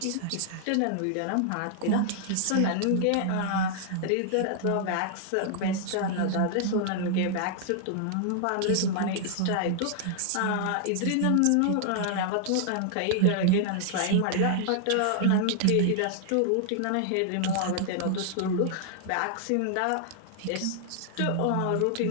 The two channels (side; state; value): both; different; correlation -0.01